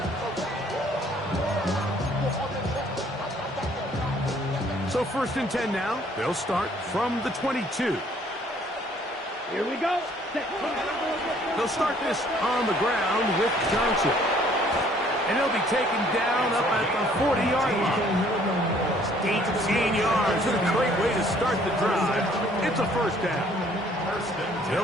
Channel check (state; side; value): normal; both; correlation 0.60